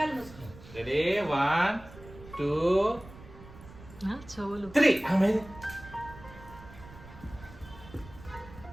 మూసుకో. రెడీ 1 2 చెవులు 3. అమ్మే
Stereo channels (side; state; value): right; noise; rumble, 18 dB below the sound